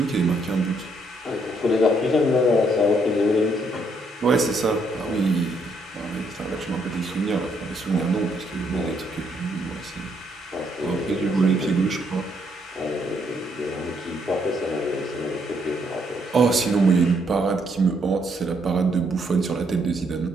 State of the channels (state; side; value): normal; both; correlation 0.72